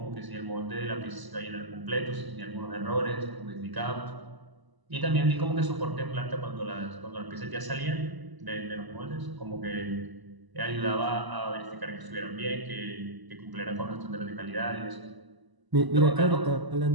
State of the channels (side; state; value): left; late; 1.0 ms